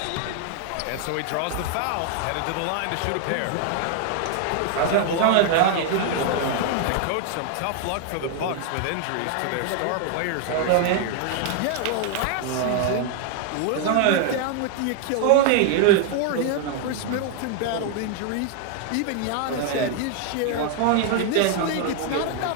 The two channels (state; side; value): different; both; correlation 0.00